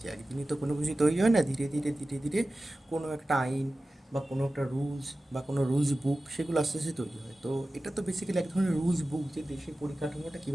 একদিনই তো কোনো কিছু তৈরি হয় না, ধীরে ধীরে ধীরে ধীরে কোনো একটা আইন বা কোনো একটা রুলস বা কোনো রুলস বুক সেগুলো আস্তে আস্তে তৈরি হয়। তো এটা তো বেসিক্যালি এক ধরনের রুলস বুক, যে দেশের পরিকাঠামোটা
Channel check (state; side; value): normal; both; correlation 0.95